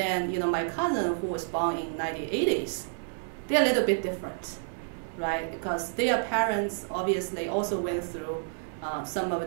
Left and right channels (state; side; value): silent; left; digital silence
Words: my cousin who was born in 1980s. They're a little bit different, right? Because their parents obviously also went through some of